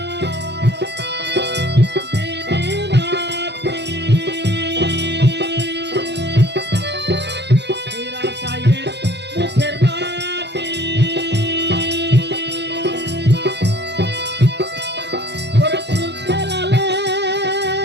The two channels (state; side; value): late; left; 0.50 ms